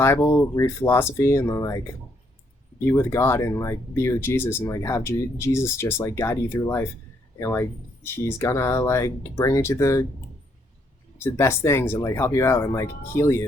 read philosophy, and then like be with God and like be with Jesus, and like have Jesus just like guide you through life, and like he's gonna like bring you to the best things and like help you out and like heal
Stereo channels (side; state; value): both; normal; correlation 0.72